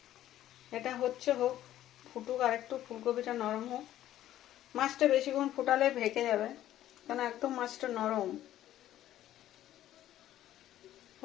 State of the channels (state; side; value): quieter; right; 12.9 dB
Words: এটা হচ্ছে হোক, ফুটুক আর একটু, ফুলকপিটা নরম হোক। মাছটা বেশিক্ষণ ফুটালে ভেঙে যাবে, কারণ একদম মাছটা নরম,